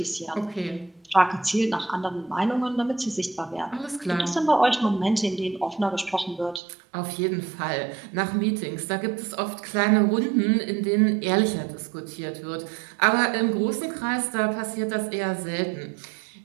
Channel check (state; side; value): drops out; left; at 6.6 s